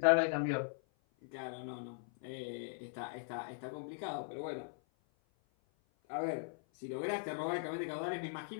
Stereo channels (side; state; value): right; silent; 51 dB below the other